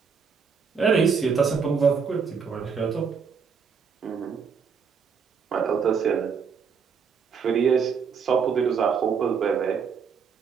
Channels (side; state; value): left; quieter; 6.1 dB